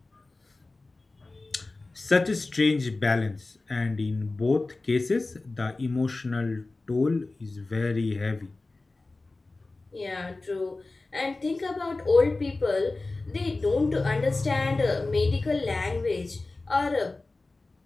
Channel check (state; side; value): quieter; right; 3.3 dB